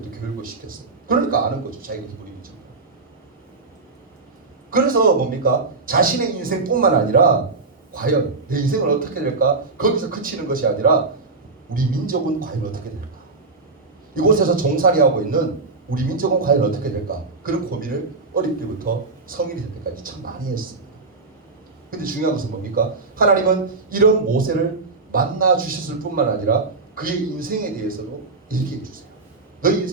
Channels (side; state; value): left; quieter; 3.9 dB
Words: 교육을 시켰어요. 그러니까 아는 거죠. 자기가 히브리인지. 그래서 뭡니까? 자신의 인생뿐만 아니라 과연 내 인생은 어떻게 될까? 거기서 그치는 것이 아니라 우리 민족은 과연 어떻게 될까? 이곳에서 종살이하고 있는 우리 민족은 과연 어떻게 될까? 그런 고민을 어릴 때부터 성인이 될 때까지 참 많이 했습니다. 근데 중요한 것은 뭡니까? 하나님은 이런 모세를 만나 주셨을 뿐만 아니라 그의 인생에 대해서도 얘기해 주세요. 너희